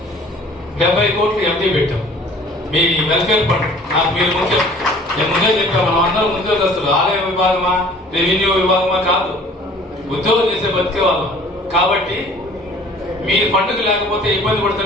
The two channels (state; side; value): normal; both; correlation 0.51